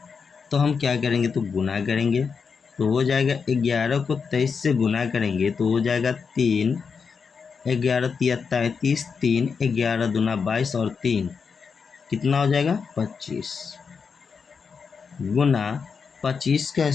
तो हम क्या करेंगे, तो गुना करेंगे। तो हो जाएगा 11 को 23 से गुना करेंगे तो हो जाएगा 3, 11 तिया 33, 3 11 दूना 22 और 3 कितना हो जाएगा 25, गुना 25 का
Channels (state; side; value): quieter; right; 5.7 dB